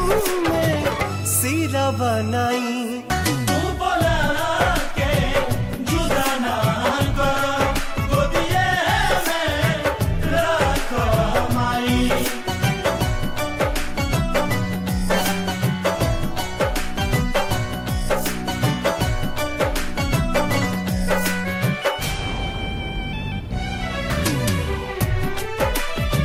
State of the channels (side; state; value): both; identical; correlation 1.00